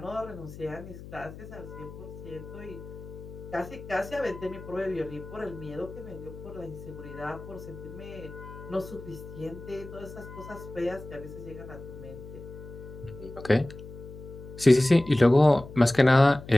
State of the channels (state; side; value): noise; left; hum, 14 dB below the sound